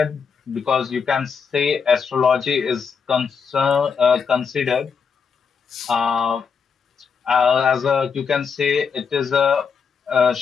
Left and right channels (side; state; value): right; quieter; 6.1 dB